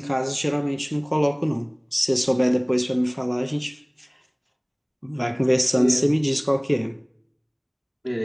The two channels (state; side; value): identical; both; correlation 1.00